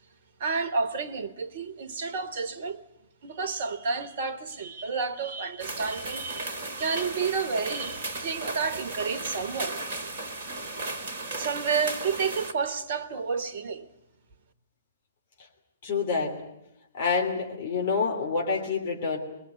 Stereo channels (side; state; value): both; inverted; correlation -0.48